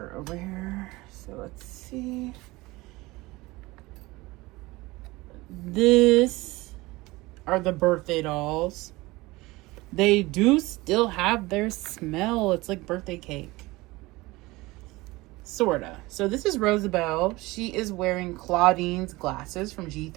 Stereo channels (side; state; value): left; quieter; 21.1 dB